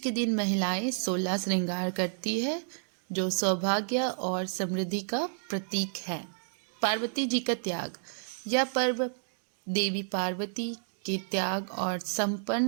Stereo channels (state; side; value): silent; left; digital silence